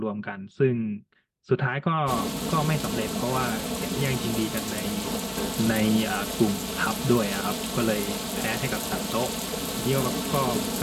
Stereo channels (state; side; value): identical; both; correlation 1.00